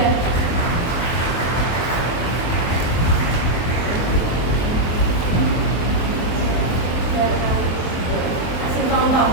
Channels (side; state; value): right; late; 23 ms